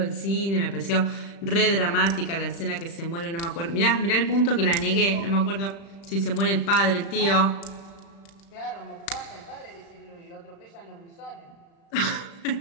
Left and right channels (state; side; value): late; right; 35 ms